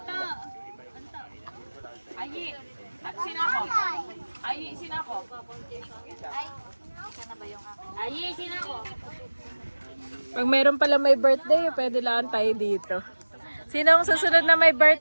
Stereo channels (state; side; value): inverted; both; correlation -1.00